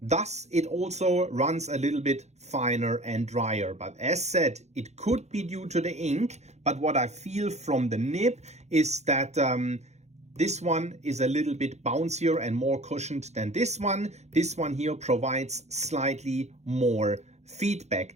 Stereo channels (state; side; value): late; left; 0.32 ms